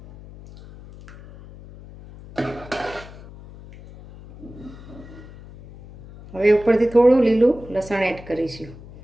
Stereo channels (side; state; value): left; noise; hum, 18 dB below the sound